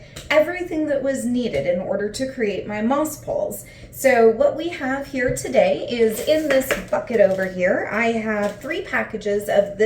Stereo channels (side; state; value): both; identical; correlation 1.00